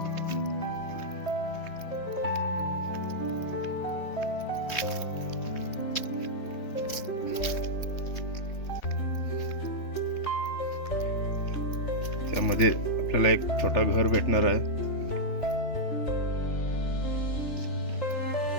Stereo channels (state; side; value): late; right; 3.3 ms